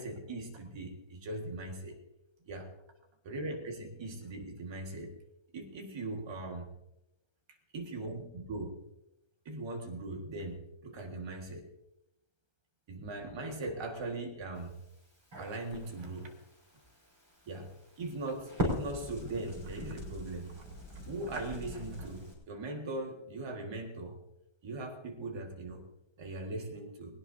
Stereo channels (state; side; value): late; left; 1.3 ms